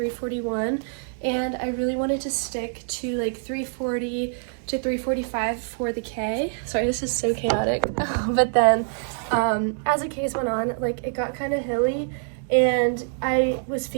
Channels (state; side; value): silent; left; digital silence